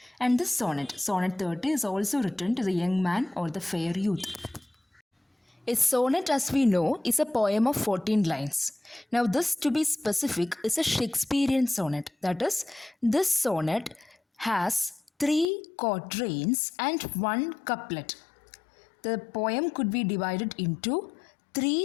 And this sonnet, Sonnet 30, is also written to the young man or the fair youth. A sonnet, as we know, is a poem of 14 lines. Now, this, to be specific, is a Shakespearean sonnet. That is, this sonnet has 3 quatrains and 1 couplet. The poem could be divided into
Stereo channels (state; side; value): drops out; right; at 15.5 s